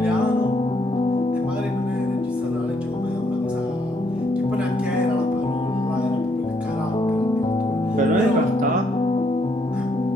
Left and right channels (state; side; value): normal; both; correlation 0.72